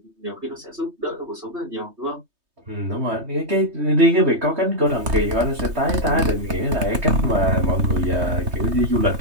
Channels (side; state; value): left; late; 3.2 ms